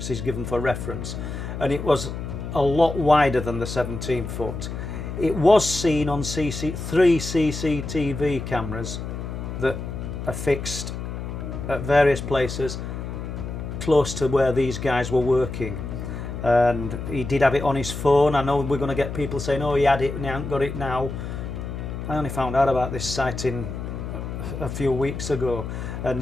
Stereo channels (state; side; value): noise; left; hum, 6 dB below the sound